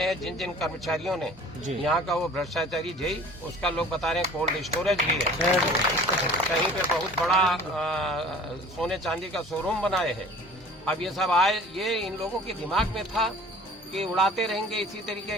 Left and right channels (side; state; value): both; normal; correlation 0.46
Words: हैं, जिन जिन कर्मचारियों ने यहाँ का वो भ्रष्टाचारी जई, उसका लोग बता रहे हैं कोल्ड स्टोरेज भी है, कहीं पे बहुत बड़ा सोने चांदी का शोरूम बनाए हैं। अब ये सब आए, ये इन लोगों के दिमाग में था कि उड़ाते रहेंगे इसी